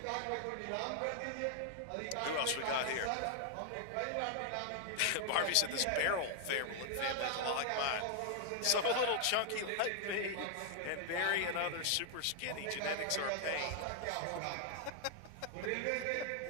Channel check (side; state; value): both; different; correlation 0.00